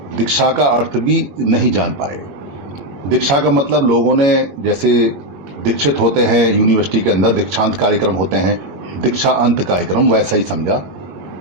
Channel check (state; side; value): late; left; 21 ms